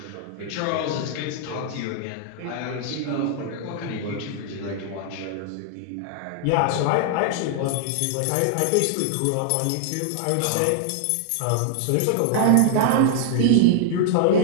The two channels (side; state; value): both; different; correlation -0.01